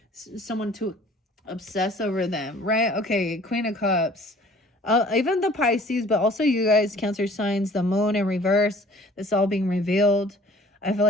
someone to obsess over them, right? Okay, Queen of Cups. Even the Pisces, but also you guys, Cancer signs, the moon in reverse, this all being revealed. I feel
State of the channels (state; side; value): normal; both; correlation 0.51